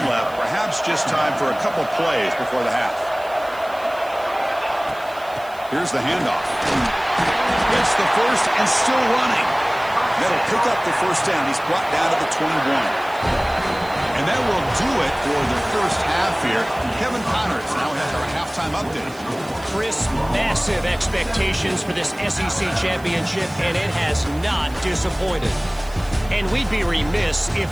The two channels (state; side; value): noise; right; hiss, 23 dB below the sound